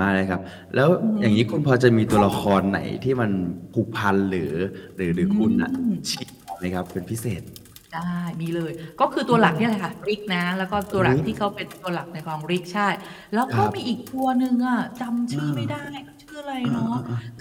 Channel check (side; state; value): both; identical; correlation 1.00